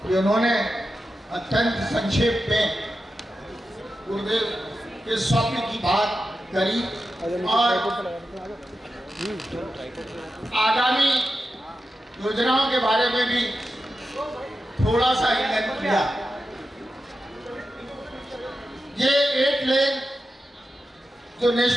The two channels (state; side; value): normal; both; correlation 0.91